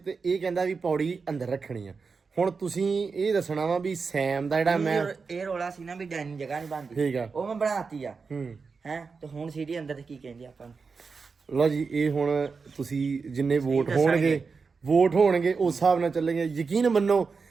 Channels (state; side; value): quieter; left; 4.9 dB